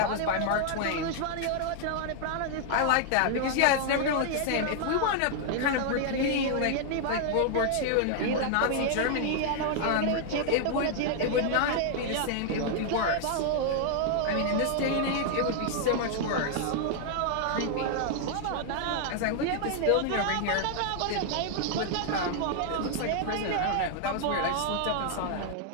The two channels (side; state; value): both; different; correlation 0.00